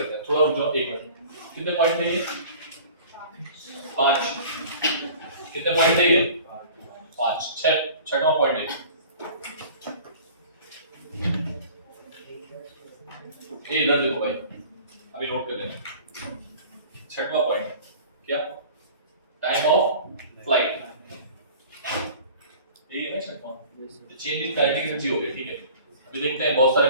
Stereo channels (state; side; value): inverted; both; correlation -0.45